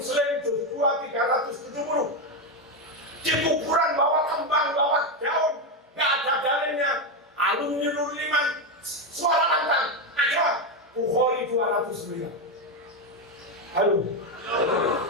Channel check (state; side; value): normal; both; correlation 0.08